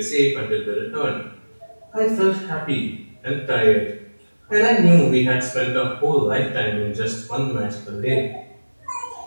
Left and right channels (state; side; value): inverted; both; correlation -1.00